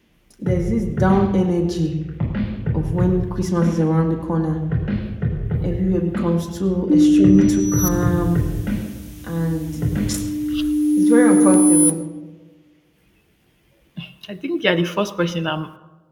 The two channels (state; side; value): identical; both; correlation 1.00